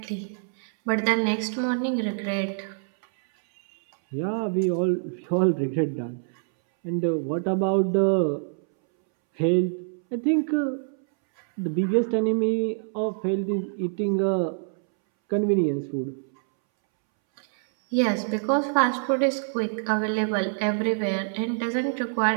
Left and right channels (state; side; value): silent; left; 61 dB below the other